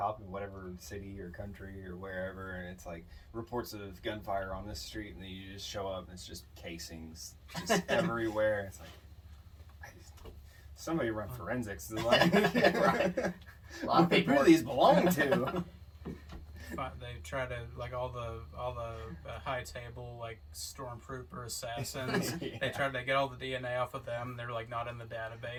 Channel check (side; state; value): both; identical; correlation 1.00